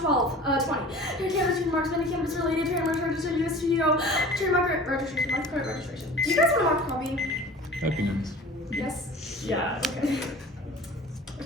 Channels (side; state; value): both; normal; correlation 0.42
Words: Cannabis trademarks, many cannabis related trademarks registered US studio, trademark registration, mark card registration. Do you guys want to mark a copy? That'd be nice. Yes? Yeah. Okay.